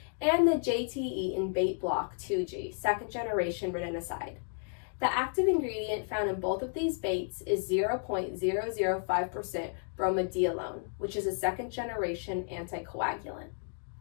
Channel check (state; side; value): silent; right; 56 dB below the other